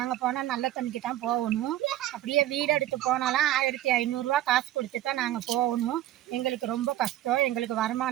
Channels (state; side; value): quieter; left; 13.6 dB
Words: போனால் நல்ல தண்ணிக்கு தான் போகணும். அப்படியே வீடு எடுத்து போனாலும் 1500 காசு கொடுத்து தான் நாங்கள் போகணும். எங்களுக்கு ரொம்ப கஷ்டம். எங்களுக்கு